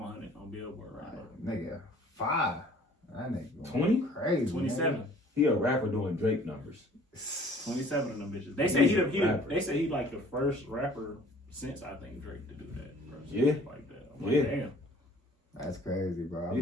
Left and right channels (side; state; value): both; normal; correlation 0.53